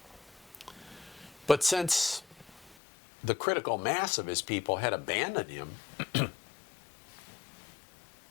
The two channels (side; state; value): right; drops out; at 2.8 s